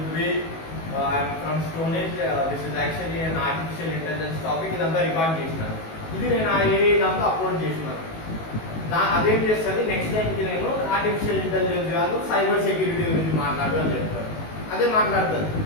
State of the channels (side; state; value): right; late; 19 ms